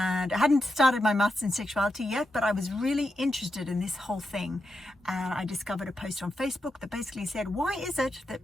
I hadn't started my maths in sexuality yet, but I was really interested in this whole thing, and I discovered a post on Facebook that basically said, why is it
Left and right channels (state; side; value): normal; both; correlation 0.86